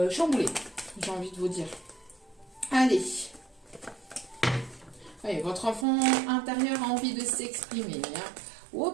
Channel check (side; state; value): left; drops out; at 5.9 s